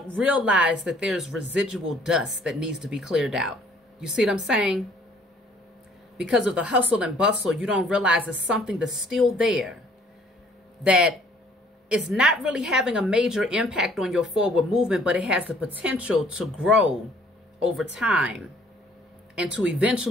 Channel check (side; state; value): both; normal; correlation 0.59